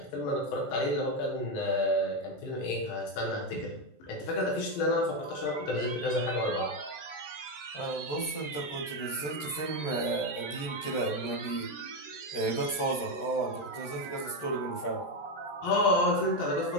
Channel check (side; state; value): right; late; 13 ms